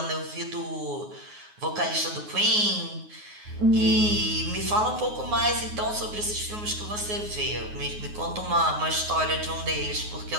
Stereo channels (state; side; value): late; left; 9.5 ms